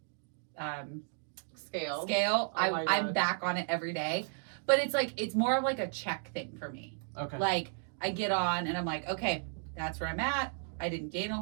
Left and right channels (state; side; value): silent; left; 55 dB below the other